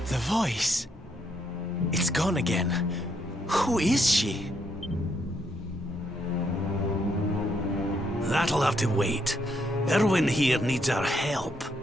The voice. It's gone again. Who is she? That'll have to wait. Irwin here needs our help.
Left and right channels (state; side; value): normal; both; correlation 0.75